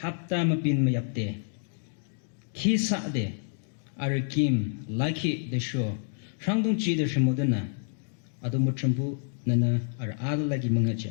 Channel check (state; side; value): silent; right; digital silence